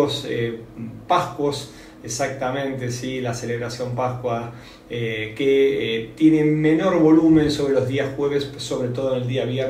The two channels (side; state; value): both; identical; correlation 1.00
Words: Pascuas, exactamente, sí, la celebración Pascua, que tiene menor volumen sobre los días jueves, sobre todo en el día